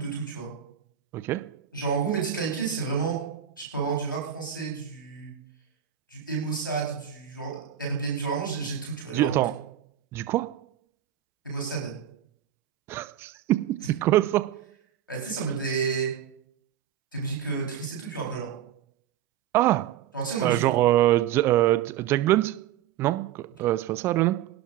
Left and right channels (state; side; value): quieter; left; 10.6 dB